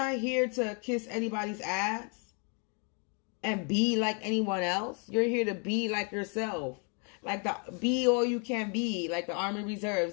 here to kiss anybody's ass and be like anyone else. You're here to be like yourself. Like be all you can be. Like the Army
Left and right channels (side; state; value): right; quieter; 38.2 dB